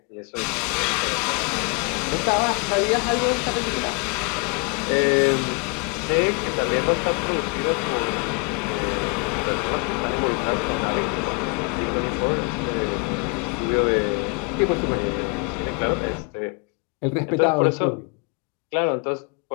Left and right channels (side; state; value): right; quieter; 31.7 dB